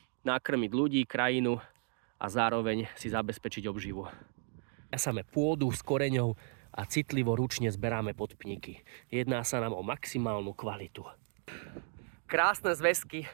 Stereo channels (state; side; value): silent; left; 55 dB below the other